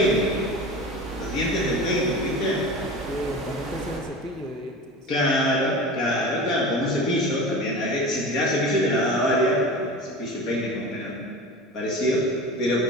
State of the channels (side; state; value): both; normal; correlation 0.33